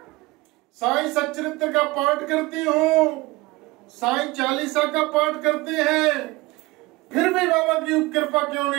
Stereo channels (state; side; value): quieter; left; 21.6 dB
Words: साईं सच्चरित्र का पाठ करती हूँ, साईं चालीसा का पाठ करते हैं, फिर भी बाबा की कृपा क्यों